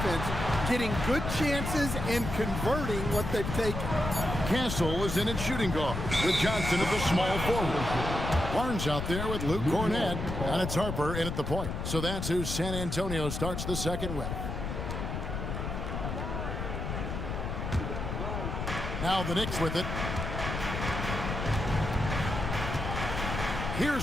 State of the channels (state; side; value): noise; left; rumble, 4 dB below the sound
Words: getting good chances and converting what they've taken. Castle is in at shooting guard with Johnson at the small forward. Barnes out there with Luke Cornett, and it's Harper in at the point. So that's who San Antonio starts the second with. Now the Knicks with it.